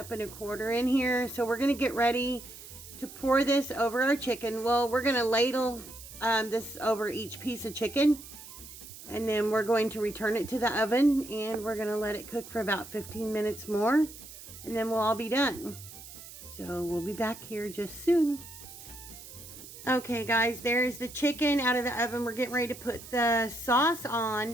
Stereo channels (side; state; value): right; noise; hiss, 15 dB below the sound